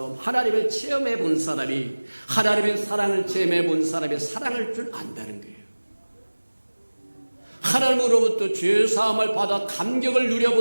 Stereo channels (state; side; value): inverted; both; correlation -1.00